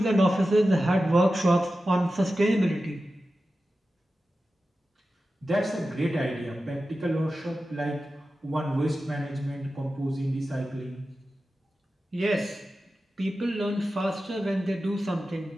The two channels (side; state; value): both; normal; correlation 0.93